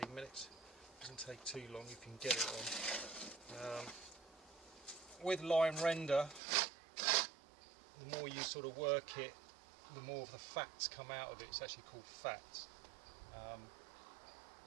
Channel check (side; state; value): left; drops out; at 6.4 s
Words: minutes. Doesn't take too long if you can get it on. With line render, the more you sort of work it, the more of the fats come out of it. It's actually called fats.